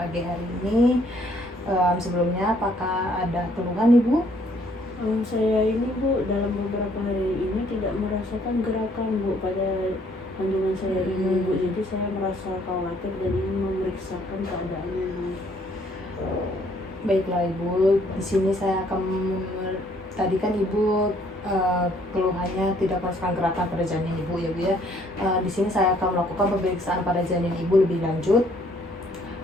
hari ini. Sebelumnya apakah ada keluhan nih Bu? Saya ini Bu, dalam beberapa hari ini tidak merasakan gerakan Bu pada kandungan saya ini Bu. Jadi saya merasa khawatir dan ingin memeriksakan keadaannya Bu. Baiklah Ibu, di sini saya akan tadi kan Ibu keluhannya tidak merasakan gerakan pada janin Ibu ya Bu ya. Di sini saya akan melakukan pemeriksaan pada janin Ibu lebih lanjut.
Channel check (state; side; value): normal; both; correlation 0.64